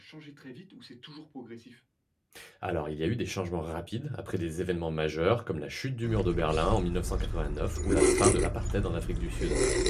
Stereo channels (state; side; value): identical; both; correlation 1.00